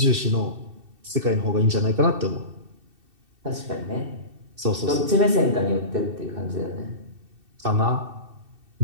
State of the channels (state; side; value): late; left; 2.7 ms